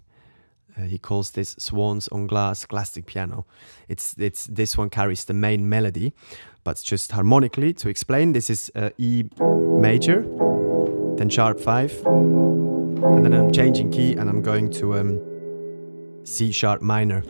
He calls this Swans on Glass classic piano. It's this one carries the main melody, but just harmonically to explain. This is E major, then sharp 5, and then I'm changing key and I'm going to C sharp minor.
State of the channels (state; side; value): inverted; both; correlation -1.00